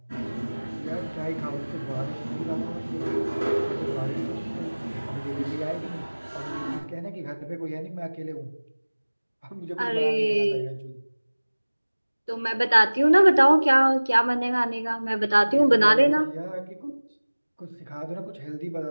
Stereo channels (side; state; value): both; inverted; correlation -1.00